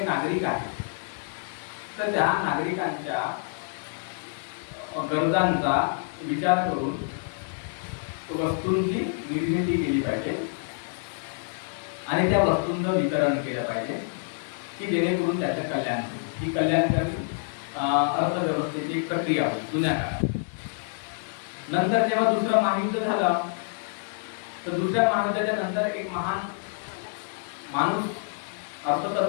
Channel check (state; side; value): silent; right; digital silence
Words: नागरिक आहेत तर त्या नागरिकांच्या गरजांचा विचार करून वस्तूंची निर्मिती केली पाहिजे आणि त्या वस्तूंचं वितरण केलं पाहिजे की जेणेकरून त्याचं कल्याण होईल. ही कल्याणकारी अर्थव्यवस्थेची एक प्रक्रिया होती जुन्या काळात. नंतर जेव्हा दुसरं महायुद्ध झालं तर दुसऱ्या महायुद्धाच्या नंतर एक महान माणूस